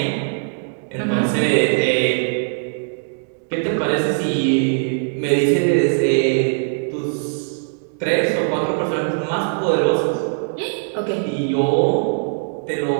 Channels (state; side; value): silent; left; digital silence